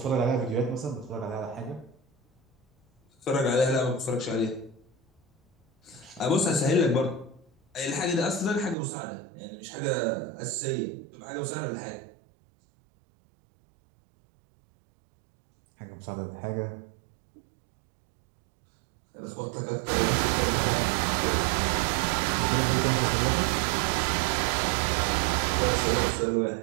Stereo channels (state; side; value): drops out; left; at 8.8 s